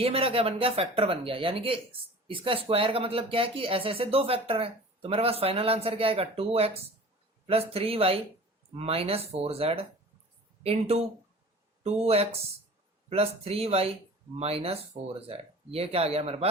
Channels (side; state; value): both; normal; correlation 0.42